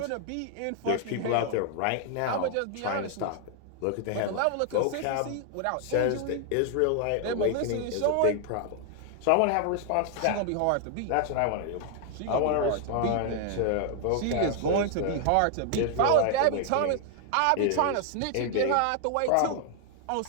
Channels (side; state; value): both; different; correlation 0.00